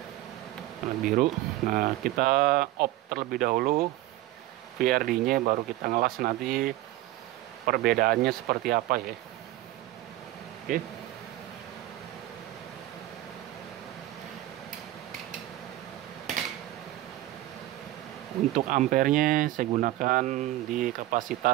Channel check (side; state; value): left; quieter; 16.0 dB